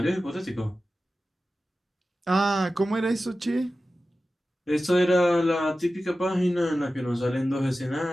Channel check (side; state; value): both; normal; correlation 0.94